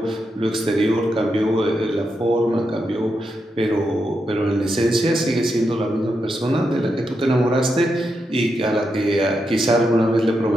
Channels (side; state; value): both; normal; correlation 0.84